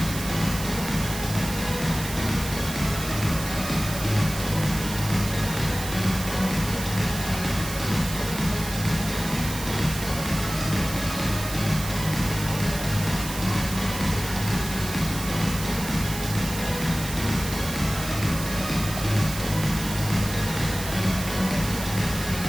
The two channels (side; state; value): right; noise; hiss, 8 dB below the sound